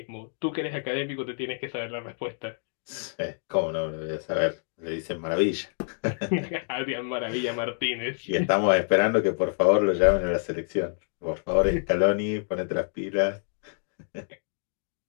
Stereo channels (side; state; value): right; silent; digital silence